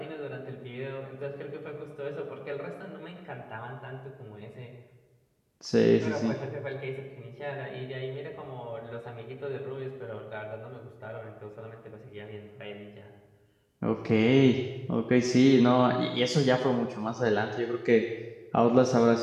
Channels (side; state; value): both; identical; correlation 1.00